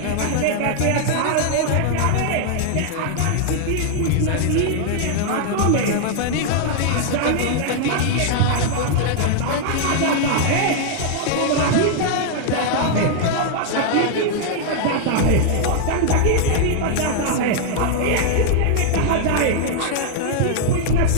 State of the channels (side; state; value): both; different; correlation -0.01